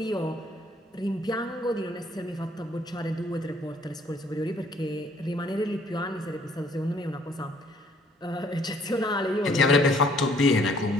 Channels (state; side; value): normal; both; correlation 0.62